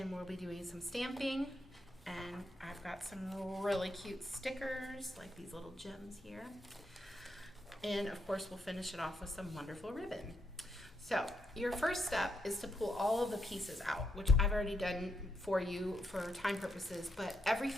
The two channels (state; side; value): normal; both; correlation 0.79